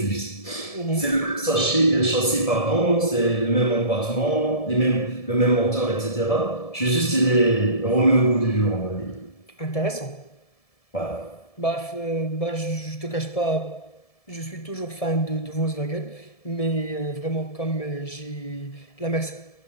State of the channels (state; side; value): late; right; 1.7 ms